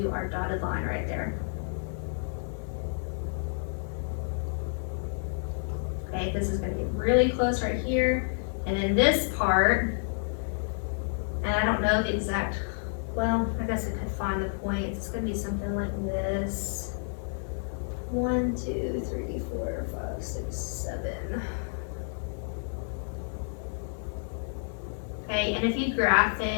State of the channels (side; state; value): right; silent; digital silence